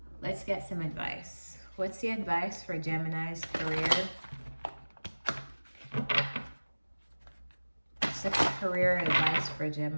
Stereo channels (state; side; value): inverted; both; correlation -1.00